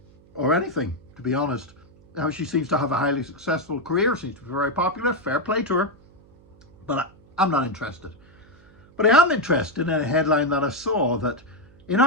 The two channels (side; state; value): right; noise; hum, 27 dB below the sound